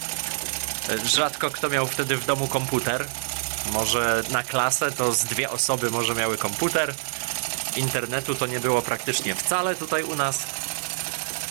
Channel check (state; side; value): silent; left; digital silence